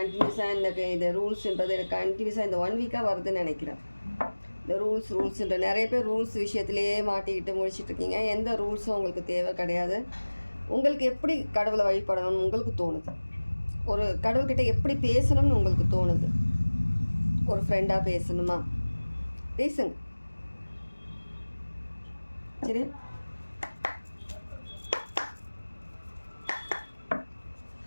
எனக்கு இந்த ரூல்ஸுன்றது எனக்கு கண்டினியூஸாக இந்த 1 வீக்காக வருதுன்னு நினைக்கிறேன். இந்த ரூல்ஸுன்ற நிறைய பேர் ரூல்ஸ் விஷயத்துலேயே மாட்டிக்கிட்டு முடிச்சிட்ருக்கீங்க. எந்த ரூல்ஸும் உங்களுக்கு தேவை கிடையாது. உங்களுக்கு எப்படி கடவுளை வழிபடணும்னு உங்களுக்கு தோணுது, ஒரு கடவுள்கிட்ட எப்படி பேசணும்னு உங்களுக்கு தோணுது, ஒரு ஃப்ரெண்டாக பேசணுமா பேசுங்க. சரி,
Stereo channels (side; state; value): both; inverted; correlation -1.00